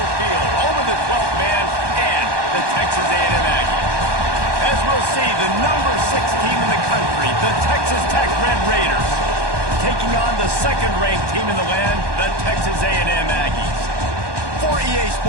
Field, home of the 12th man and the Texas A&M Aggies. As we'll see, the number 6 team in the country, the Texas Tech Red Raiders, taking on the second-ranked team in the land, the Texas A&M Aggies. For EA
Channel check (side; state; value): left; late; 1.2 ms